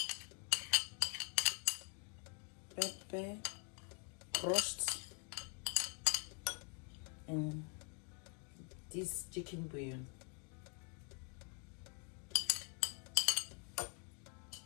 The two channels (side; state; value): right; quieter; 38.5 dB